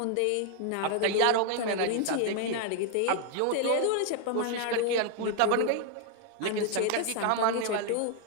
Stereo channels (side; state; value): both; different; correlation 0.00